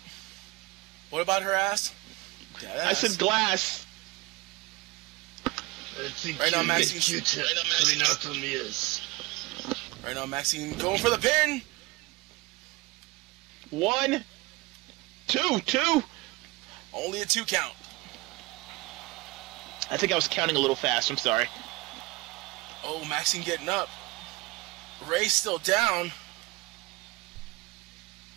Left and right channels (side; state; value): left; quieter; 22.4 dB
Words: What about her ass? I said glass. I think Right now, you Maxine- get Q-tip coming out from ears. Right now, Maxine going for the pin. 1, 2. Only a 2 count. I think I was counting a little fast. I'm sorry. Oh, Maxine getting up. Ray's still down.